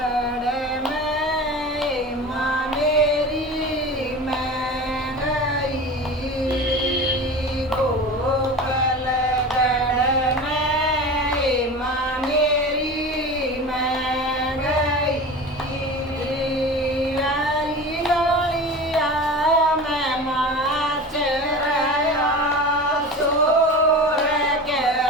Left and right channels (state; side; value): normal; both; correlation 0.33